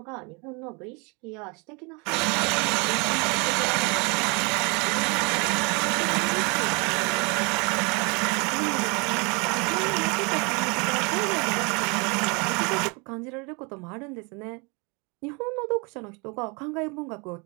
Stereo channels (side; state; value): left; quieter; 30.7 dB